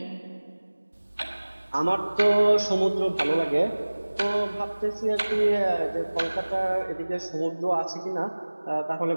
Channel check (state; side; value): inverted; both; correlation -1.00